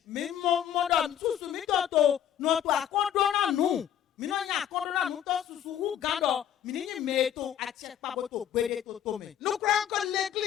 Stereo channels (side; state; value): right; quieter; 10.2 dB